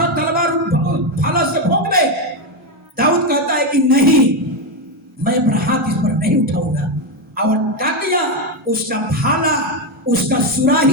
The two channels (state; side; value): normal; both; correlation 0.08